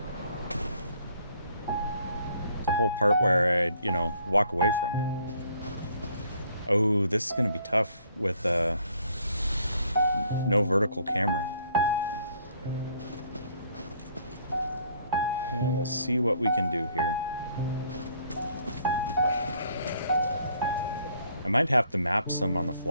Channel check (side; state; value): both; inverted; correlation -0.63